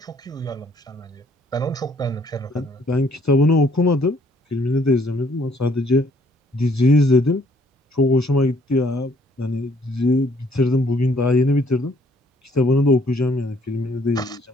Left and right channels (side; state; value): both; normal; correlation 0.63